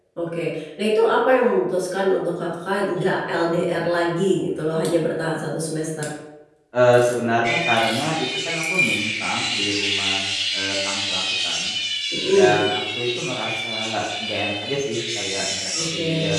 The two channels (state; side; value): identical; both; correlation 1.00